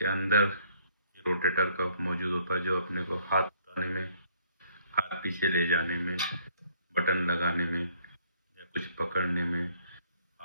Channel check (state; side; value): inverted; both; correlation -0.64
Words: अंदर ये रोटेटर कफ मौजूद होता है, जो अपने को हाथ उठाने में, हाथ पीछे ले जाने में, बटन लगाने में या कुछ पकड़ने में,